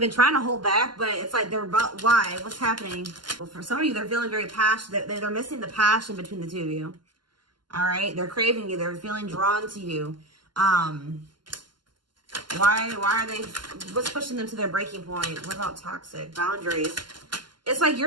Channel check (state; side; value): late; left; 0.71 ms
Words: trying to hold back, but it's like they're about... Why? What's happening? Well, for some of you, they're feeling very passionate. They're missing the passion between the two of you. All right? They're craving you. They're feeling drawn to you. Why are they... What's pushing them to their breaking point? What about toxic? Boundaries. It's like